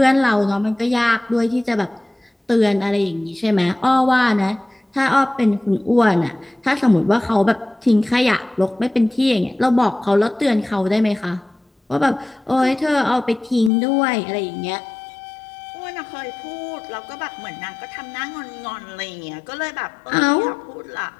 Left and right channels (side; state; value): right; drops out; at 13.7 s